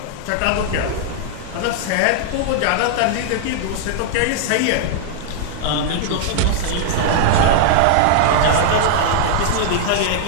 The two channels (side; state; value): both; different; correlation -0.01